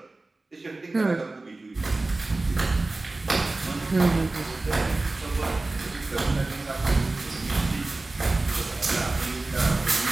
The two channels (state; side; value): quieter; left; 3.1 dB